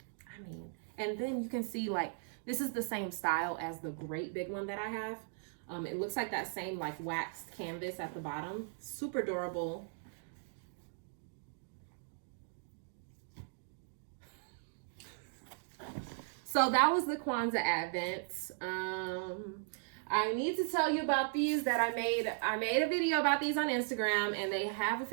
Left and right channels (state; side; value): silent; left; digital silence